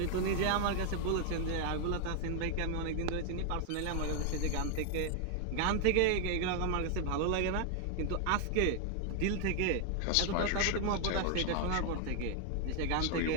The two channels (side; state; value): both; different; correlation 0.00